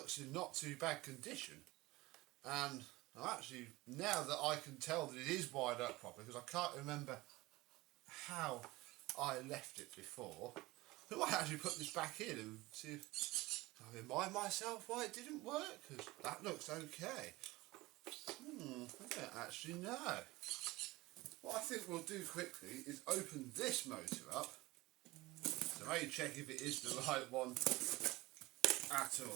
in not too bad condition, and actually, now that I can tell that it is wired up properly, because I can't remember how I left it before, I might actually put this back in and see if I remind myself why it didn't work, because that looks okay. I don't actually know. What I think we'll do quickly is open this motor up to maybe check if it is the right one at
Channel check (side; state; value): left; quieter; 20.2 dB